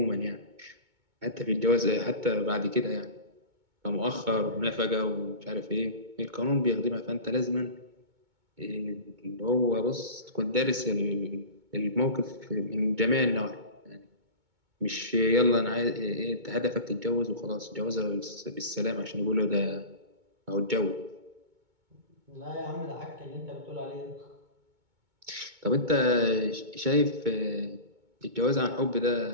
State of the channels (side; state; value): left; late; 2.2 ms